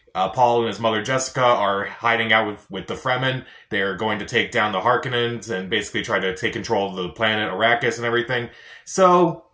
Paul and his mother Jessica are hiding out with the Fremen. They're going to take down the Harkonnens and basically try to take control of the planet Arrakis and everything. So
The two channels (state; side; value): identical; both; correlation 1.00